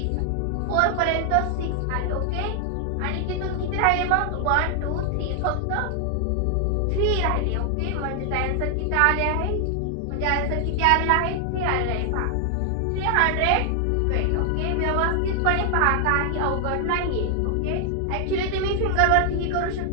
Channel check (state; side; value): different; both; correlation 0.00